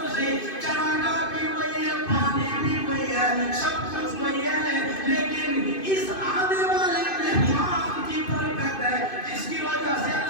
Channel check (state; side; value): late; right; 2.5 ms